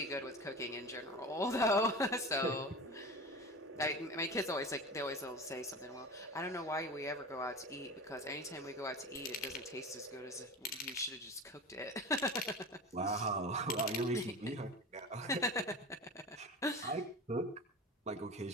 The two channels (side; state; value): both; normal; correlation 0.32